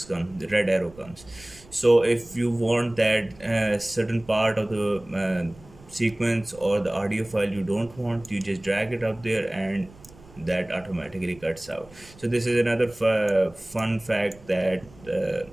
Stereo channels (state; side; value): noise; right; rumble, 23 dB below the sound